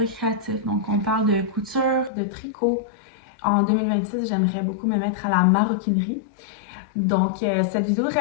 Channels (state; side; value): drops out; right; at 2.1 s